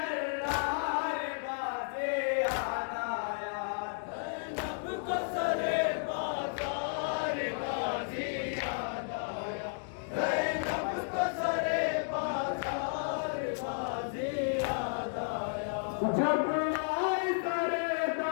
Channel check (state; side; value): silent; right; digital silence